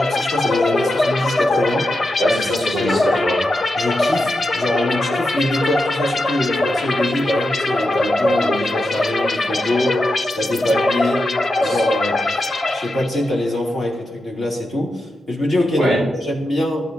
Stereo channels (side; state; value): both; normal; correlation 0.88